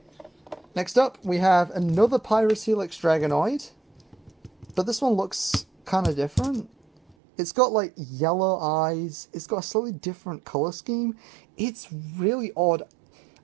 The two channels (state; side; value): drops out; left; at 7.2 s